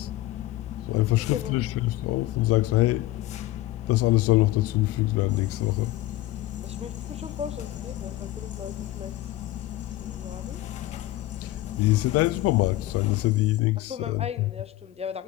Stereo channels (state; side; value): quieter; right; 16.4 dB